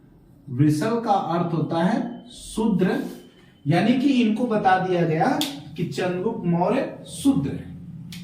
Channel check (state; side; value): identical; both; correlation 1.00